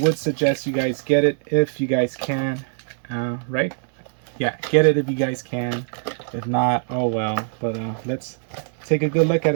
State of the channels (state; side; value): silent; left; digital silence